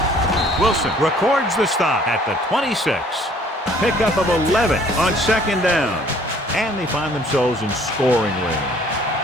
Wilson records the stop at the 26. Pickup of 11 on 2nd down. And they find themselves in scoring range.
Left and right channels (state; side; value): normal; both; correlation 0.57